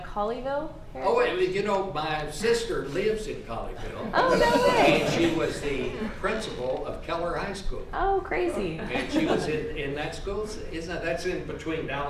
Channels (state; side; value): identical; both; correlation 1.00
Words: Oh, you know, my sister lives in Colleyville. Oh, no way. And she was the principal of Keller High School. Oh, crazy. And she was in that school. That's in between